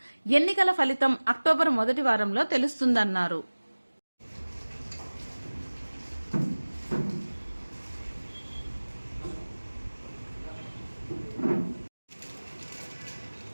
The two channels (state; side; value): inverted; both; correlation -1.00